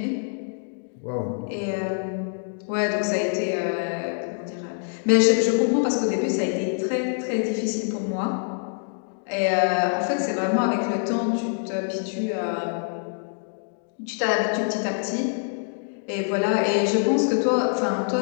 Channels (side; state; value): right; silent; digital silence